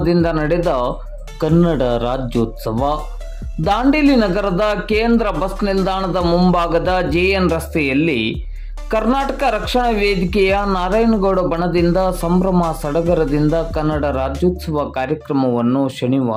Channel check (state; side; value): identical; both; correlation 1.00